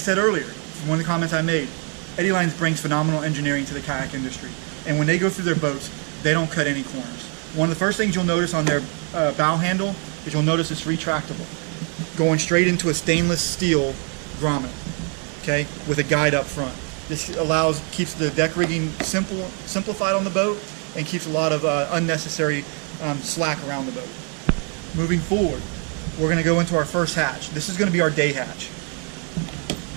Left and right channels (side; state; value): left; quieter; 39.7 dB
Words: earlier, one of the comments I made, Eddyline brings phenomenal engineering to the kayak industry. And when they go through their boats, they don't cut any corners. One of the first things you'll notice on their bow handle is you'll notice it's retractable, going straight into a stainless steel grommet, okay, with a guide up front. This keeps the deck rigging simplified on the boat and keeps a lot of unnecessary slack around the boat. Moving forward, we're going to go into our first hatch. This is going to be our day hatch,